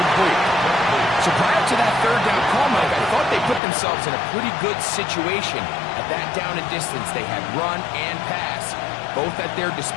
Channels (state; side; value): drops out; right; at 3.6 s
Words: So prior to that 3rd down call, Mike, I thought they put themselves in a pretty good situation. At that down and distance, they had run and pass, both at their